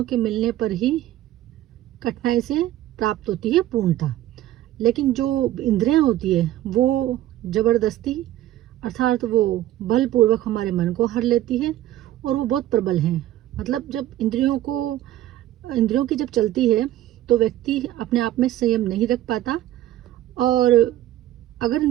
के मिलने पर ही कठिनाई से प्राप्त होती है पूर्णता। लेकिन जो इंद्रियां होती है वो जबरदस्ती, अर्थात वो बलपूर्वक हमारे मन को हर लेती है और वो बहुत प्रबल हैं। मतलब जब इंद्रियों की जब चलती है तो व्यक्ति अपने आप में संयम नहीं रख पाता, और अगर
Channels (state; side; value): quieter; left; 13.9 dB